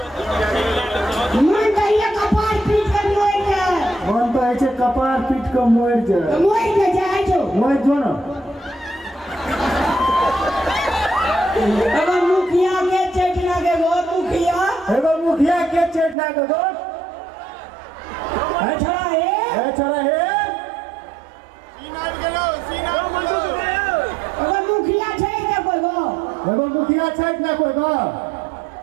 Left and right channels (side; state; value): left; drops out; at 16.2 s